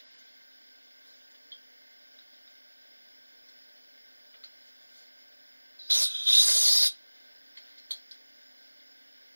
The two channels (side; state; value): both; inverted; correlation -1.00